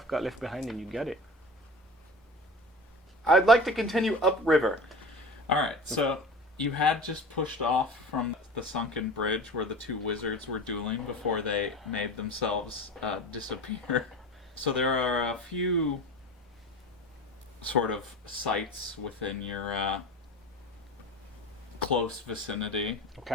got left behind and you got it. I'd like to continue upriver. Alright, so you had just pushed off from the sunken bridge where the two wizards were dueling before they made themselves disappear. So there are a few sort of sites within your close vicinity.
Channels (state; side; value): normal; both; correlation 0.33